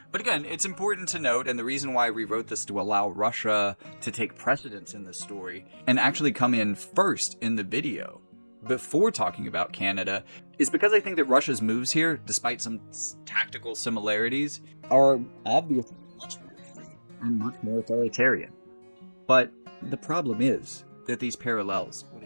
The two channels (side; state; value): both; inverted; correlation -1.00